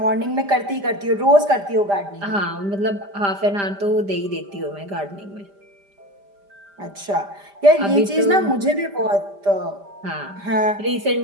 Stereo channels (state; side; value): late; left; 5.0 ms